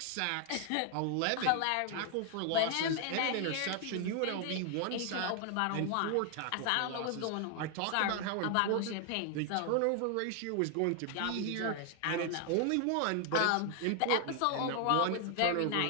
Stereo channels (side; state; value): both; different; correlation 0.00